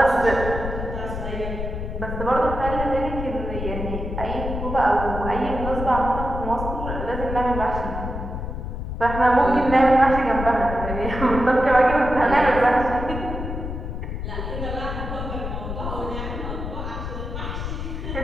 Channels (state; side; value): noise; left; rumble, 5 dB below the sound